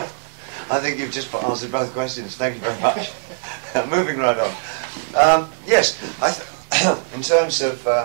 I think you've just answered both questions. Thank you very much. Moving right on. Yes, in terms of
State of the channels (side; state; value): left; silent; digital silence